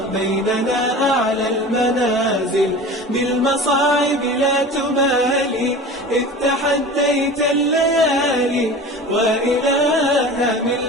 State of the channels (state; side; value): normal; both; correlation 0.36